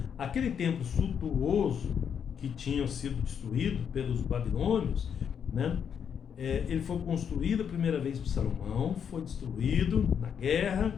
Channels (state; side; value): quieter; right; 7.7 dB